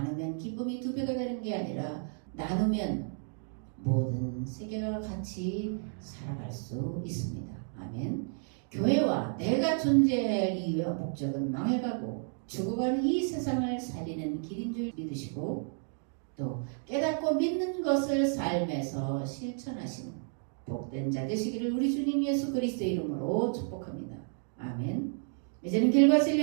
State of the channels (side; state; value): left; silent; 57 dB below the other